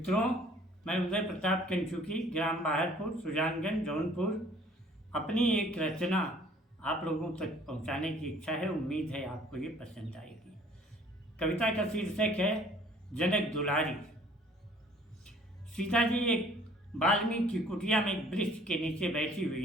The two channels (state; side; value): normal; both; correlation 0.55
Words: मैं उदय प्रताप कंचुकी, ग्राम बाहरपुर, सुजानगंज, जौनपुर, अपनी एक रचना आप लोगों तक पहुंचाने की इच्छा है। उम्मीद है आपको ये पसंद आएगी। कविता का शीर्षक है जनक दुलारी। सीता जी एक वाल्मीकि की कुटिया में एक वृक्ष के नीचे बैठी